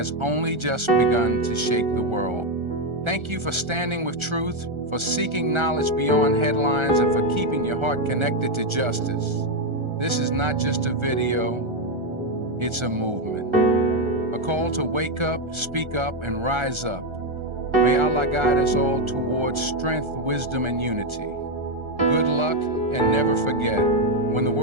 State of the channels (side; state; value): left; late; 1.3 ms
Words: only just begun to shake the world. Thank you for standing with truth, for seeking knowledge beyond headlines, and for keeping your heart connected to justice. This is not just a video, it's a movement. A call to wake up, speak up, and rise up. May Allah guide us all towards strength, wisdom, and unity. Good luck, and never forget, when the